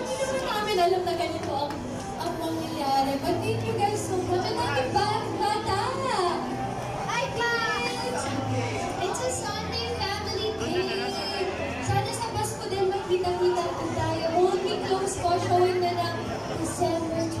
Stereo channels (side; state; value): both; identical; correlation 1.00